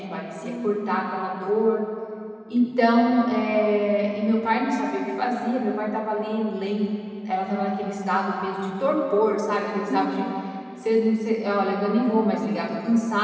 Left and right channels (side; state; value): both; identical; correlation 1.00